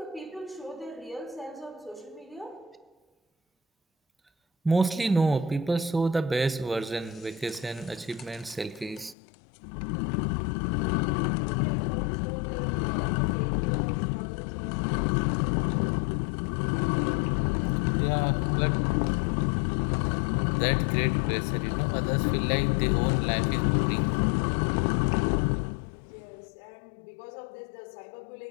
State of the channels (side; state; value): right; drops out; at 9.2 s